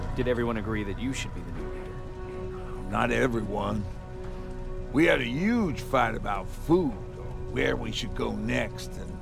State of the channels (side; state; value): both; identical; correlation 1.00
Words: Did everyone agree that you should be the new leader? Not everyone. We had a huge fight about food, or where we should go next, and